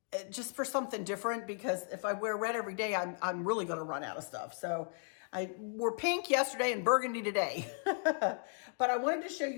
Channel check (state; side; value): silent; right; 54 dB below the other